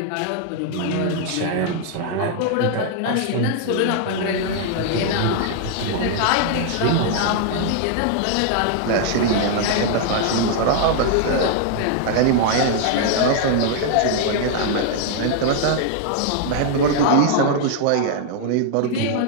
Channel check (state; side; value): different; both; correlation 0.00